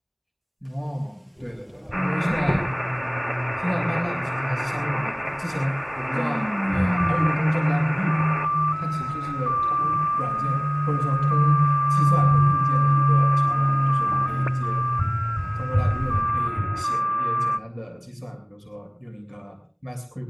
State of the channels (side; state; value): both; identical; correlation 1.00